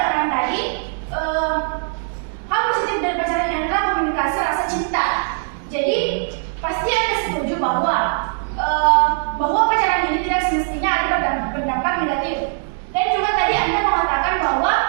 tadi, hal positif dari pacaran adalah komunikasi rasa cinta. Jadi pasti Anda setuju bahwa pacaran ini tidak semestinya ada berdampak negatif. Dan juga tadi Anda mengatakan bahwa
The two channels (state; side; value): silent; left; 66 dB below the other